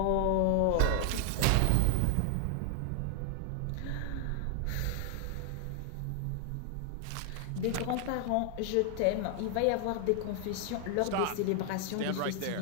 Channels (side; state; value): both; different; correlation 0.00